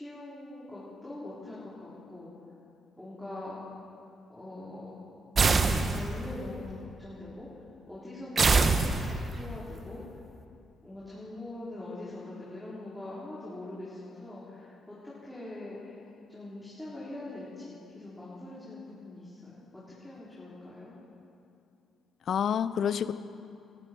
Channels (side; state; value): both; normal; correlation 0.82